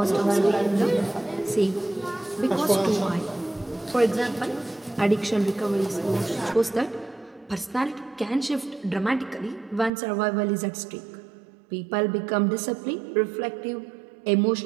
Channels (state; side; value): drops out; left; at 9.9 s